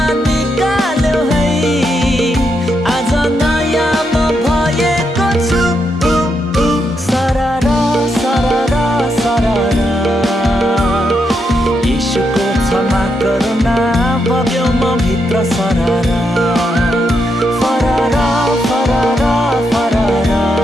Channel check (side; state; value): both; normal; correlation 0.81